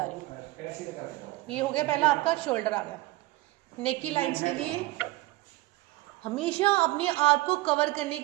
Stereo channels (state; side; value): quieter; left; 19.7 dB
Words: रही हूँ। ये हो गया पहला आपका शोल्डर आ गया। नेक की लाइंस के लिए हमेशा अपने आप को कवर करने